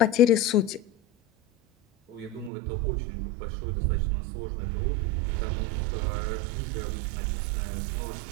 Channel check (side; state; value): left; drops out; at 2.5 s